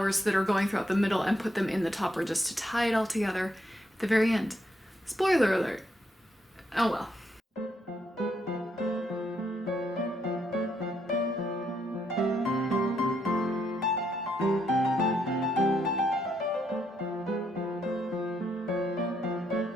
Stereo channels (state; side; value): normal; both; correlation 0.76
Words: that are going throughout the middle and put them in the topper just to tie it all together at the very end. Spoiler alert. Oh well.